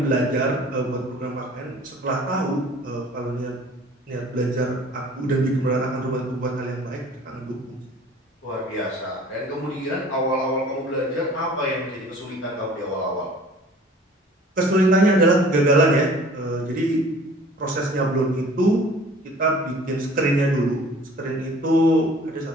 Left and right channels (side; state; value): both; normal; correlation 0.49